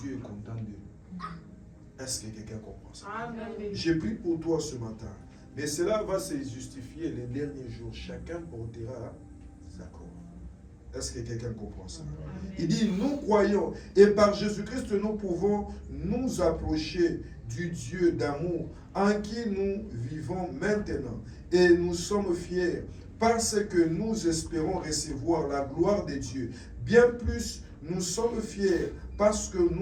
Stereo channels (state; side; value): identical; both; correlation 1.00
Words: Dieu est content d'eux. Est-ce que quelqu'un comprend ça? Amen. J'ai pris pour toi ce matin, mais cela va se justifier les derniers jours. Chacun portera sa croix. Est-ce que quelqu'un comprend ça? Amen. Il dit, nous croyons et par Jésus-Christ nous pouvons nous approcher du Dieu d'amour en qui nous vivons maintenant. Et nous sommes fiers parce que nous espérons recevoir la gloire de Dieu. Bien plus, nous sommes fiers parce que